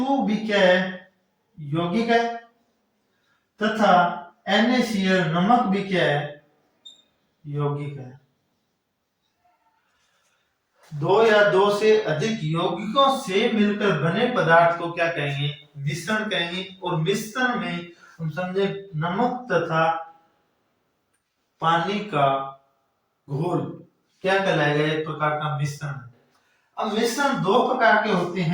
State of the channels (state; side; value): identical; both; correlation 1.00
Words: भी क्या है, यौगिक है, तथा NaCl नमक भी क्या है, यौगिक है। दो या दो से अधिक यौगिकों से मिलकर बने पदार्थ को क्या कहेंगे, मिश्रण कहेंगे। और मिश्रण में हम समझे नमक तथा पानी का घोल क्या कहलाएगा, एक प्रकार का मिश्रण है। अब मिश्रण दो प्रकार के होते